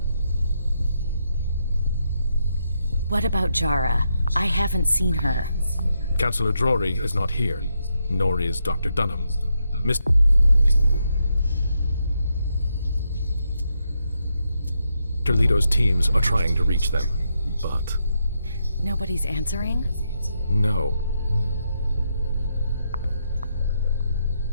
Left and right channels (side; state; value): both; inverted; correlation -0.81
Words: What about Jara? I haven't seen her. Councillor Drury is not here, nor is Dr. Dunham. Mr. Lido's teams are trying to reach them, but... Nobody's answering? No.